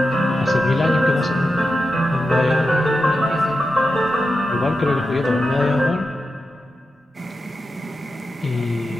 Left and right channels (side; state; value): both; normal; correlation 0.90